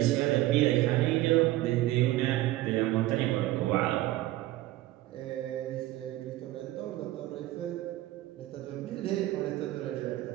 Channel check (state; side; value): quieter; left; 16.2 dB